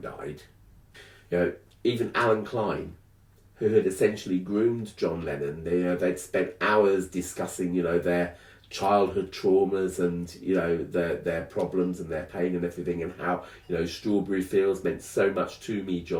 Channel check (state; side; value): identical; both; correlation 1.00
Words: died. You know, even Alan Klein, who had essentially groomed John Lennon, they'd spent hours discussing, you know, their childhood traumas and, you know, their problems and their pain and everything, and how, you know, Strawberry Fields meant so much to me,